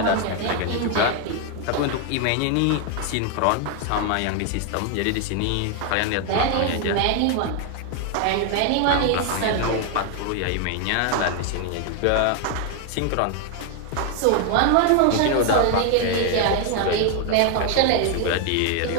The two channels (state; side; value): different; both; correlation 0.01